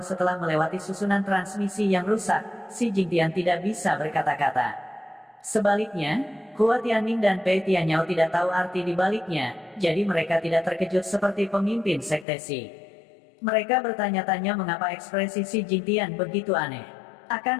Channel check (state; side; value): drops out; right; at 12.2 s